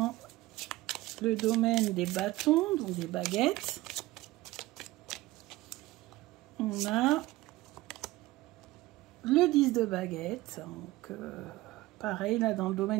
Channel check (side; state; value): left; quieter; 18.6 dB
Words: le domaine des bâtons, donc des baguettes, on a le 10 de baguettes. Donc, pareil, là, dans le domaine